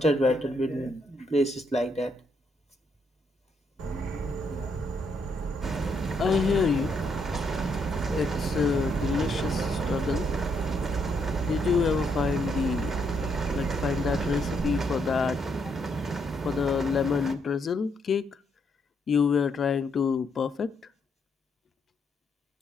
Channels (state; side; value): normal; both; correlation 0.75